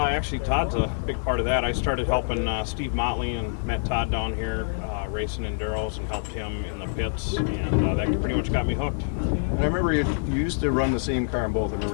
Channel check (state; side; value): silent; right; 61 dB below the other